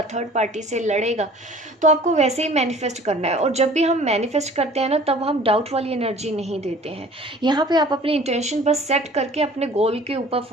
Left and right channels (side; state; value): both; normal; correlation 0.49